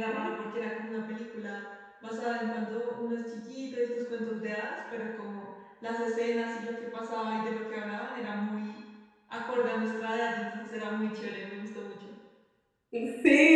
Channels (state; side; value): identical; both; correlation 1.00